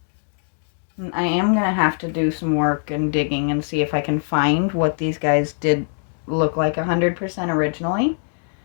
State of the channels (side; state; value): right; silent; 57 dB below the other